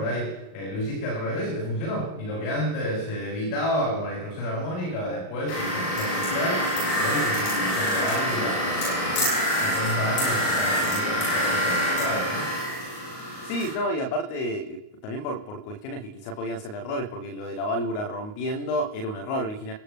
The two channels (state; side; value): late; right; 38 ms